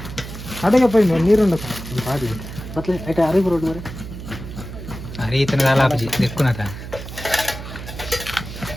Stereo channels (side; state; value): right; noise; hum, 11 dB below the sound